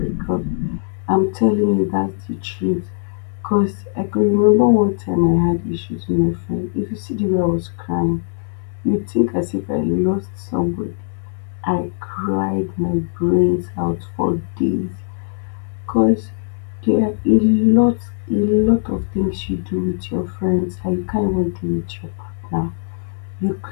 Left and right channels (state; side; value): silent; right; digital silence